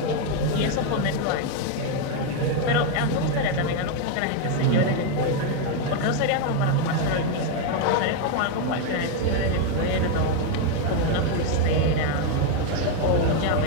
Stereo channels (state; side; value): different; both; correlation 0.01